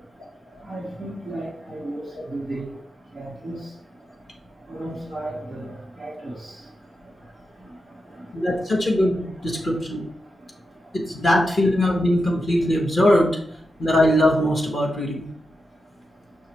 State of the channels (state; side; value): normal; both; correlation 0.88